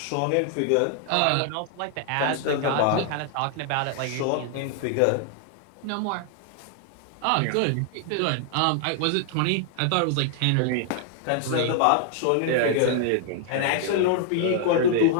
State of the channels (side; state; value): both; different; correlation 0.00